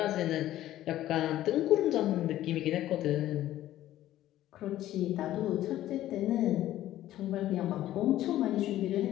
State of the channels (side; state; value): right; quieter; 13.7 dB